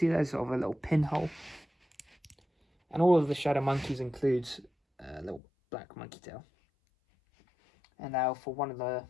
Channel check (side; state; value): right; drops out; at 5.4 s